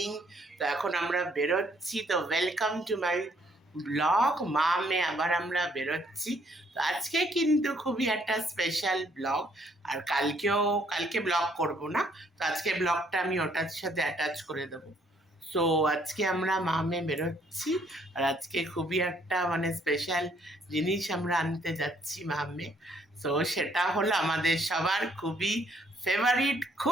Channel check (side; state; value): both; normal; correlation 0.67